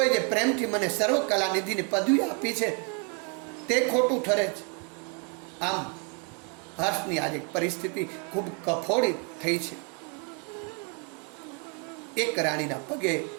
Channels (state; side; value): quieter; left; 37.1 dB